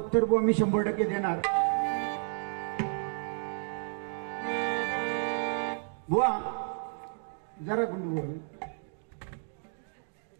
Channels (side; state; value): left; silent; digital silence